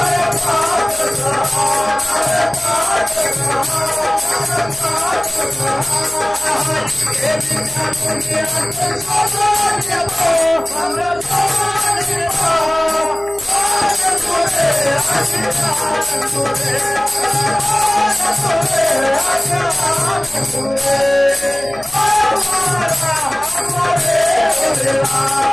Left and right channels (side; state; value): right; noise; hum, 20 dB below the sound